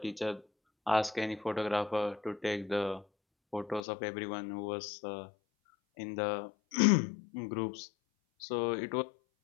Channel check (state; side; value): drops out; right; at 3.8 s